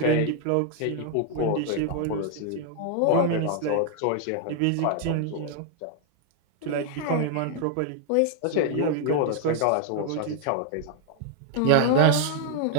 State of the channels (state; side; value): different; both; correlation 0.00